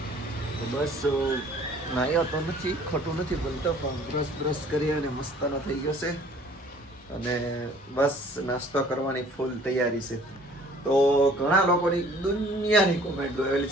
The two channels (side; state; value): both; normal; correlation 0.53